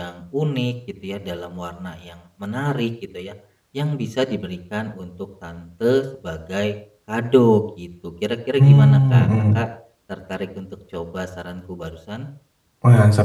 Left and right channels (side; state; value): both; identical; correlation 1.00